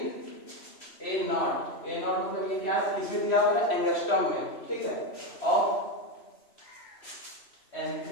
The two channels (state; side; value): late; right; 3.0 ms